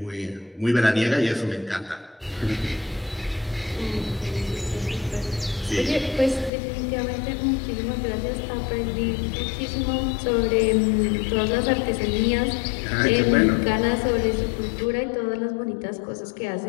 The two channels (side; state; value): right; drops out; at 6.5 s